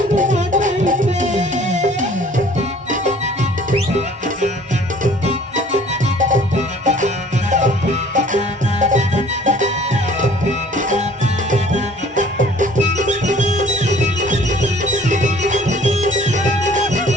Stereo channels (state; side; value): normal; both; correlation 0.53